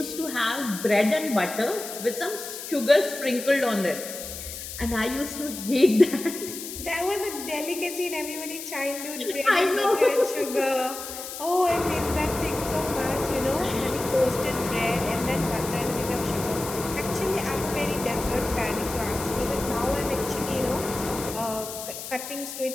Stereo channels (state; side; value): noise; left; hiss, 9 dB below the sound